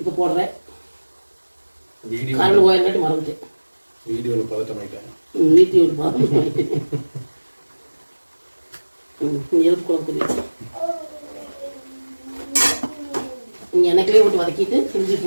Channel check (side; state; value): both; inverted; correlation -1.00